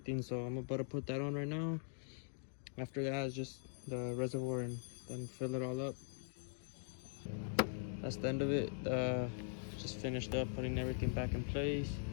So I'm about to put that on right now. After that is just the reservoir, and then fill it all up. That's the end of it. Just finished up putting everything back in place.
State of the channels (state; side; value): silent; right; digital silence